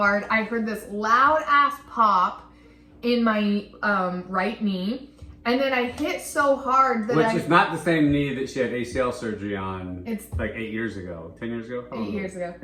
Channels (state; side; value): identical; both; correlation 1.00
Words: I heard this loud ass pop in my right knee. And then I hit so hard that Which is not the same knee that she had ACL surgery on. It's like 8 years ago, 10 years ago. 8 years ago.